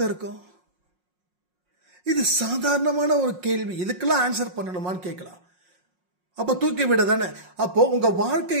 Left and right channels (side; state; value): left; late; 5.5 ms